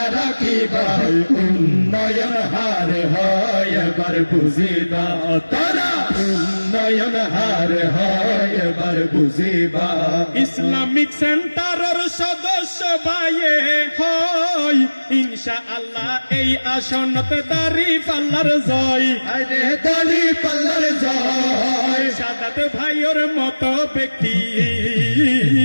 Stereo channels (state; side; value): inverted; both; correlation -1.00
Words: রাখিবা উন্নয়ন হার হয় এবার বুঝিবা তোরা উন্নয়ন হার হয় এবার বুঝিবা ইসলামিক সেন্টারের সদস্য ভাইয়ে হয় ইনশাআল্লাহ এই আসনত দাড়ি পাল্লার জয় আরে দাড়ি পাল্লার জয় শাহাদাত ভাইয়ের মতো ব্যক্তি